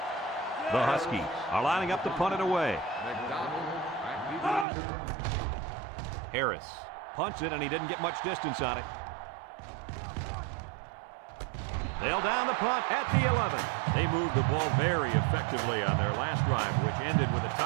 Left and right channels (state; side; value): drops out; left; at 4.7 s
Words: The Huskies are lining up to punt it away. Harris punts it, and he didn't get much distance on it. They'll down the punt at the 11. They moved the ball very effectively on their last drive, which ended with a